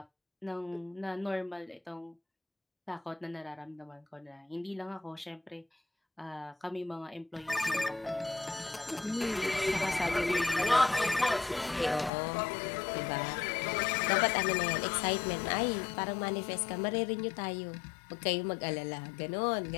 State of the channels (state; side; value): drops out; right; at 12.1 s